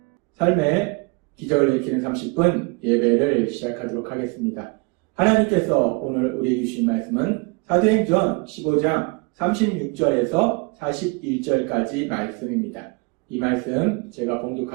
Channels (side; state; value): left; quieter; 29.6 dB